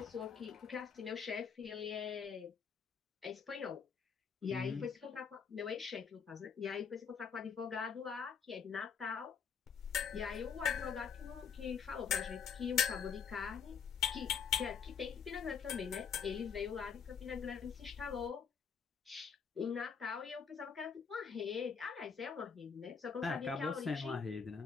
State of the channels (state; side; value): quieter; right; 6.6 dB